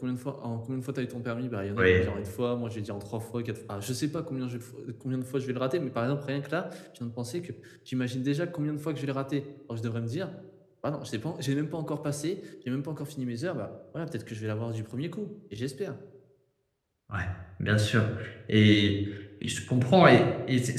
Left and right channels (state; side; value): identical; both; correlation 1.00